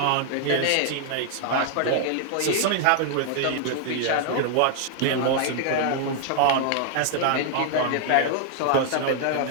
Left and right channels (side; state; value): both; different; correlation 0.00